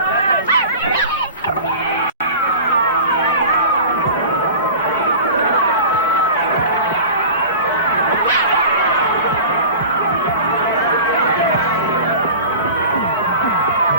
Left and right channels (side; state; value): both; inverted; correlation -0.36